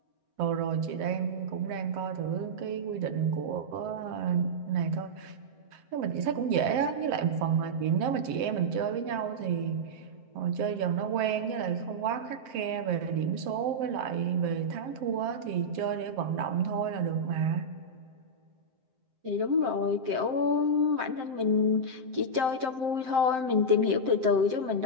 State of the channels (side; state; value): left; late; 7.7 ms